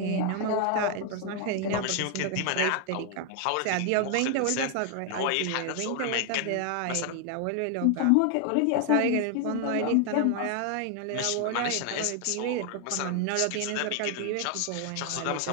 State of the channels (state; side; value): different; both; correlation 0.00